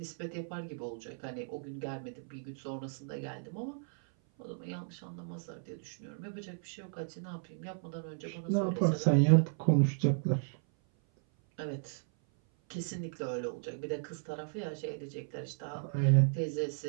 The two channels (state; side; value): silent; left; 55 dB below the other